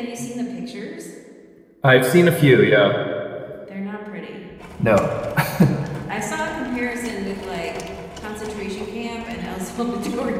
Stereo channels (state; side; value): identical; both; correlation 1.00